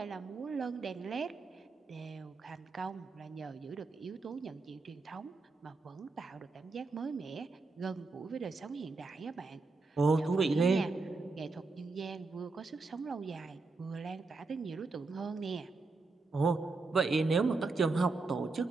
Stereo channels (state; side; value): quieter; left; 3.8 dB